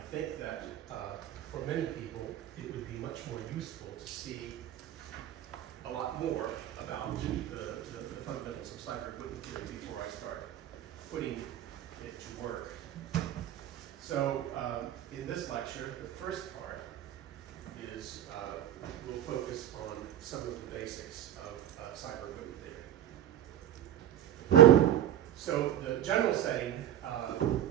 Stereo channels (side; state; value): left; quieter; 11.8 dB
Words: think that for many people, it would be much more useful to see a lot more about the fundamentals of cyber-equipment theory before I start putting it to work. So in this lecture, the first part is we'll focus on some of the basics of cyber-equipment theory. So the general setting,